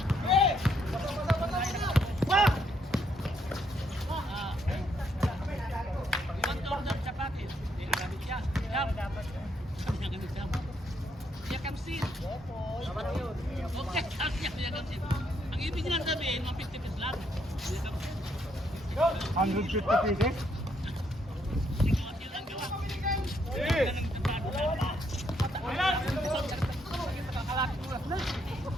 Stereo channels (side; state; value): both; normal; correlation 0.74